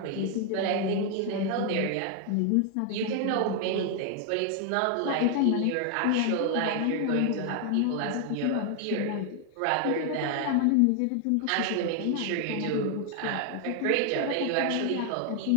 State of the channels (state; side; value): different; both; correlation 0.00